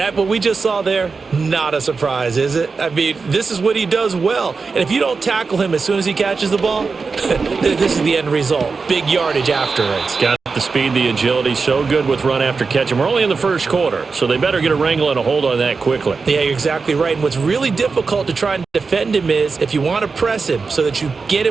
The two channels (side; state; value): left; quieter; 4.6 dB